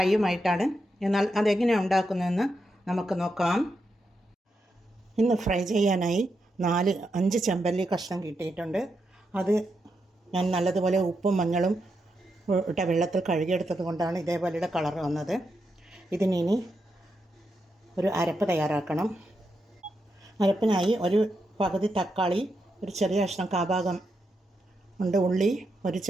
എന്നാൽ അതെങ്ങനെയാണ് ഉണ്ടാക്കുന്നതെന്ന് നമുക്ക് നോക്കാം. ഇന്ന് ഫ്രൈ ചെയ്യാനായി 4-5 ചെമ്പല്ലി കഷ്ണം കിട്ടിയിട്ടുണ്ട്. അത് ഞാൻ നല്ലതുപോലെ ഉപ്പും മഞ്ഞളും ഇട്ട വെള്ളത്തിൽ കഴുകിയെടുത്തത് കൊണ്ടാണ് ഇതേപോലെയുടെ കളർ വന്നത്. ഇതിനി ഒരു അരപ്പ് തയ്യാറാക്കണം. അരപ്പിനായി ഒരു പകുതി തക്കാളി, ഒരു ചെറിയ കഷ്ണം കാഭാഗം ഉണ്ട് ഉള്ളി, ഒരു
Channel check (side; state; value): both; normal; correlation 0.84